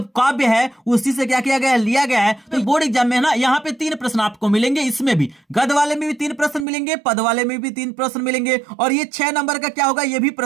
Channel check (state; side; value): drops out; left; at 6.7 s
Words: काव्य है उसी से क्या किया गया है, लिया गया है। तो बोर्ड एग्जाम में ना यहाँ पे 3 प्रश्न आपको मिलेंगे, इसमें भी गद वाले में भी 3 प्रश्न मिलेंगे, पद वाले में भी 3 प्रश्न मिलेंगे और ये 6 नंबर का क्या होगा, ये भी